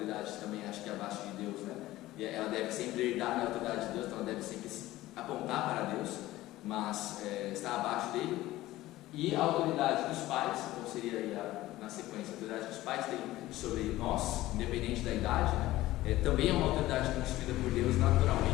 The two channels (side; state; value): right; quieter; 16.5 dB